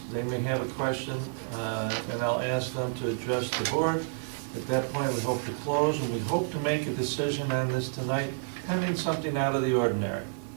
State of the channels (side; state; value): left; silent; digital silence